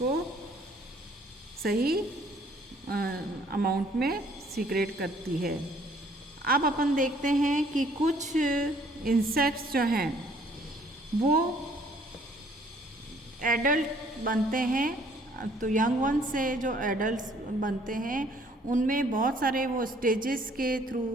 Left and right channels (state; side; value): normal; both; correlation 0.60